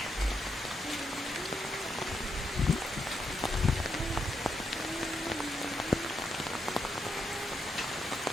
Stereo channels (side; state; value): both; normal; correlation 0.81